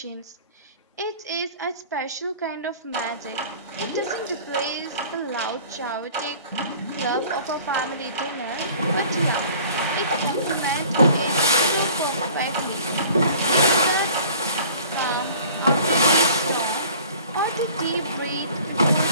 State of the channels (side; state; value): both; inverted; correlation -0.48